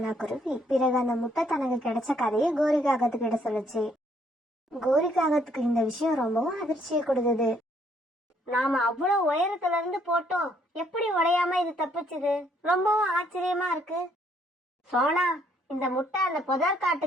குருவி பிறகு அந்த முட்டை தனக்கு கிடைச்ச கதையை கோரிக்காகத்துக்கிட்ட சொல்லுச்சு. கோரிக்காகத்துக்கு இந்த விஷயம் ரொம்பவும் அதிர்ச்சியை கொடுத்தது. நாம அவ்வளவு உயரத்துல இருந்து போட்டோம், எப்படி உடையாம இது தப்பிச்சுது? ரொம்பவும் ஆச்சரியமா இருக்கு. சோனா, இந்த முட்டை அந்த புதர்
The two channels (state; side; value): normal; both; correlation 0.68